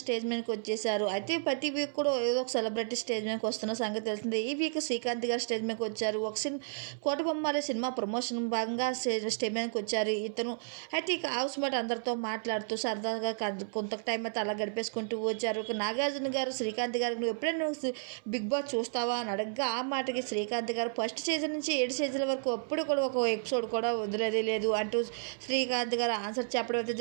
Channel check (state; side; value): silent; left; 56 dB below the other